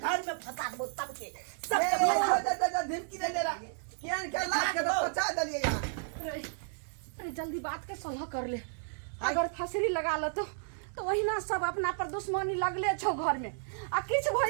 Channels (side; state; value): left; silent; digital silence